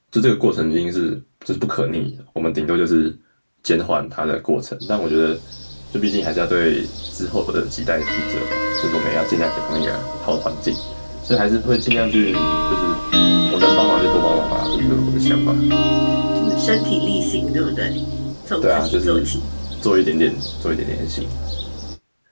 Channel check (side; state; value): both; inverted; correlation -1.00